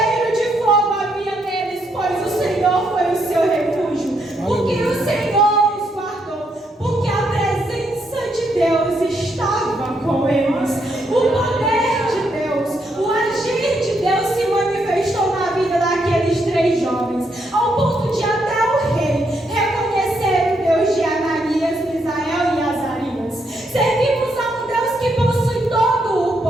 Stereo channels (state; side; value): normal; both; correlation 0.77